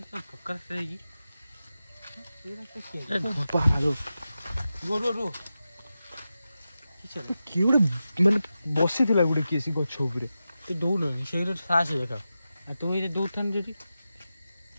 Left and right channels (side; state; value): both; inverted; correlation -0.92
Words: ପକ୍କା ରାସ୍ତା ହେଇକି ଏଇ ରାସ୍ତା କିଏ ଗୋଟେ ମାନେ ବସିଥିଲା ଗୋଟେ କିଏ ସେ ଗଛ ଉପରେ ତୁ ଦୌଡ଼ୁନି ସେଇଟା ସାହସ ଦେଖାଉ ଆଉ ତୁ ଏଇଟା ଦୌଡ଼ଥାନ୍ତୁ ଯଦି